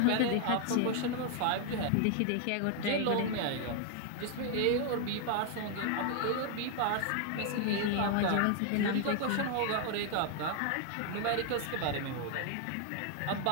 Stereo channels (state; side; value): different; both; correlation 0.00